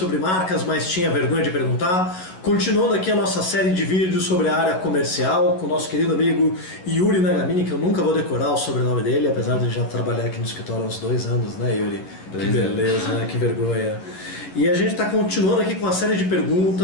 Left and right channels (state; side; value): late; right; 11 ms